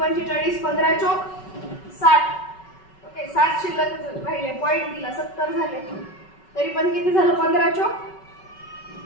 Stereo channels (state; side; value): late; right; 5.3 ms